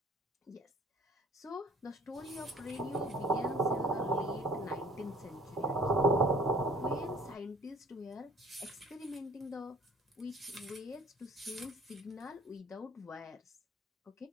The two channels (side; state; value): both; normal; correlation 0.52